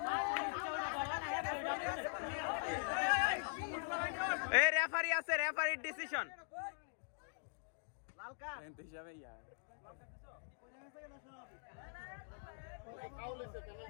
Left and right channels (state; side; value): silent; right; digital silence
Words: এই রেফারি আছে রেফারির ডিসিশন লাল কার্ড